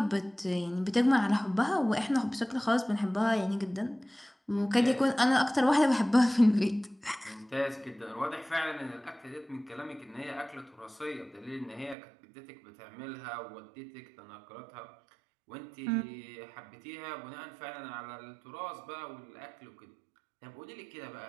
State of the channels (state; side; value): drops out; left; at 12.0 s